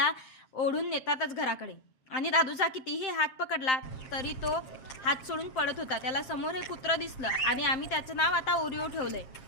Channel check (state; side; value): late; right; 7.7 ms